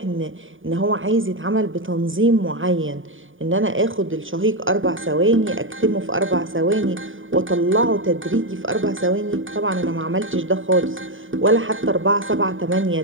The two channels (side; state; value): left; late; 0.57 ms